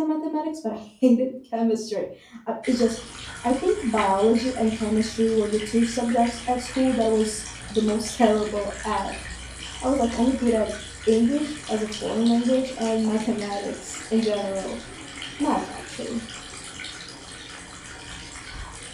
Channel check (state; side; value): identical; both; correlation 1.00